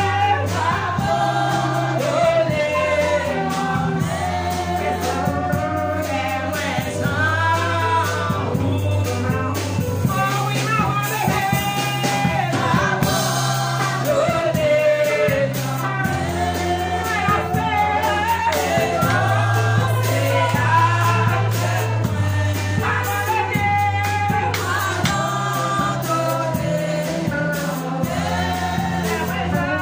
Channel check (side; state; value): both; identical; correlation 1.00